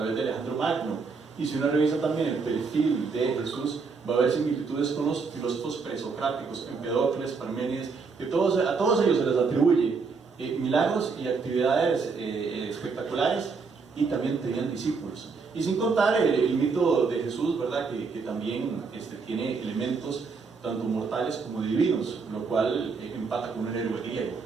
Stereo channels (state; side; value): quieter; left; 4.8 dB